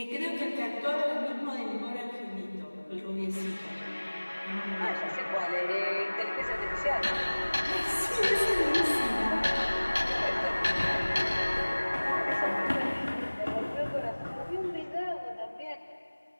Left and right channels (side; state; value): both; inverted; correlation -1.00